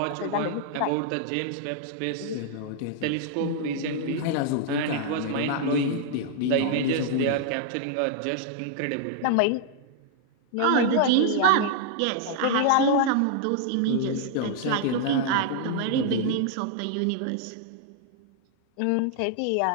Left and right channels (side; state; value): both; different; correlation -0.01